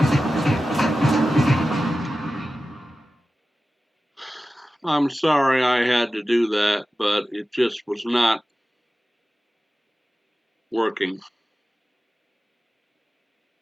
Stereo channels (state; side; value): normal; both; correlation 0.94